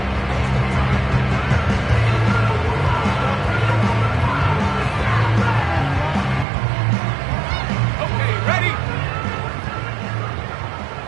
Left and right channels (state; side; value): drops out; left; at 6.5 s